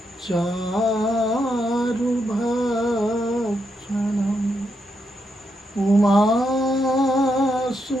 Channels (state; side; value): normal; both; correlation 0.81